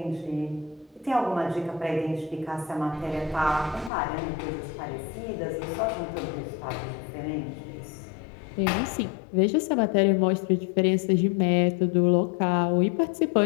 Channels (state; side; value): drops out; right; at 3.9 s